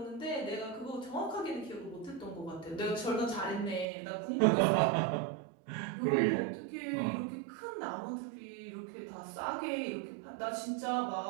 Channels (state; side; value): drops out; left; at 3.9 s